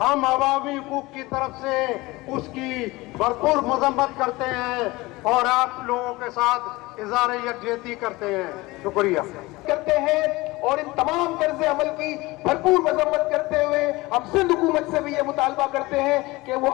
हम अवामी हुकूक की तरफ से उसकी भरपूर मजम्मत करते हैं और आप लोगों के साथ इज़हार यकजहती करते हैं। शुक्रिया करते हैं और इन तमाम तर्ज़ अमल की भरपूर मजम्मत करते हुए हम सिंध हुकूमत से भी ये मुतालबा करते हैं कि वो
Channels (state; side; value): quieter; right; 21.3 dB